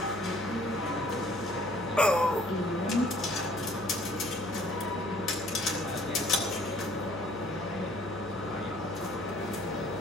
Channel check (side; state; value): left; noise; hum, 14 dB below the sound